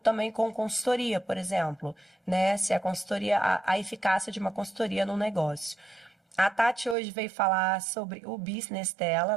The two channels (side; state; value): left; drops out; at 7.0 s